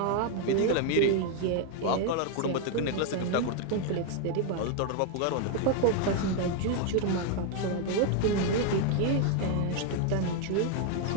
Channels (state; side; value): different; both; correlation 0.01